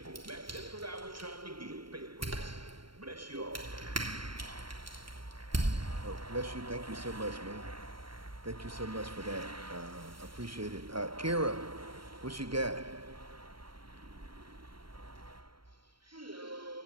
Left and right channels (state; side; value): late; left; 0.73 ms